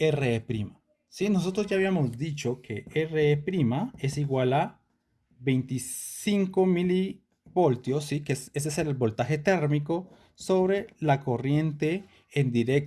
¿Sí? Nosotros ya habíamos dicho que RE' es igual a 25 milivoltios, ¿sí? Ese es el voltaje térmico sobre la corriente en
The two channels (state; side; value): identical; both; correlation 1.00